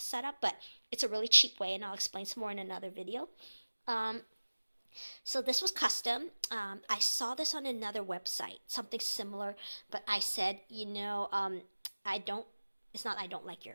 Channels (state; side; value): inverted; both; correlation -1.00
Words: but it's a really cheap way, and I'll explain some more in another video. So this was custom. I saw this on another website, something similar, but I said, it's not I don't like